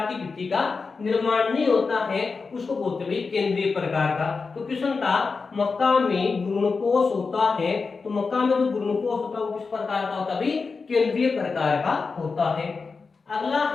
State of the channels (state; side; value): quieter; right; 4.6 dB